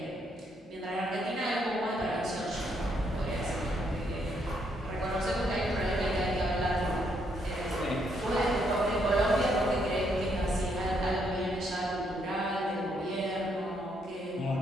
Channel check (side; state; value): both; normal; correlation 0.74